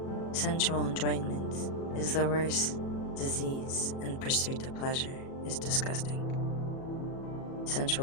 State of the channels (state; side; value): late; right; 37 ms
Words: Sensual enjoyment is the worst disease, and pursuit of pleasure is disgusting.